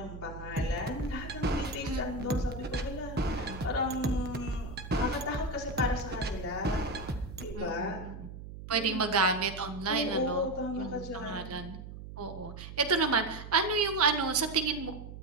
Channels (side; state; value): right; noise; hum, 11 dB below the sound